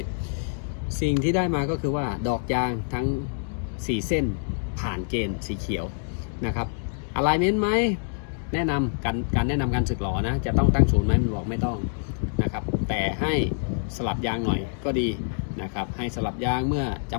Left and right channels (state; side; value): silent; right; digital silence